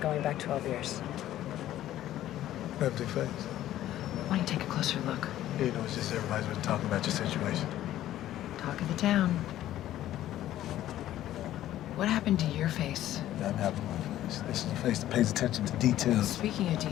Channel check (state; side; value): quieter; right; 13.2 dB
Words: back 12 years. Empty face. Why don't you take a closer look? You know, it's just everybody's been talking about your situation. Talk of the town. What happened to your face? I'm happy with my face. This is a face that pays attention to details. Speaking of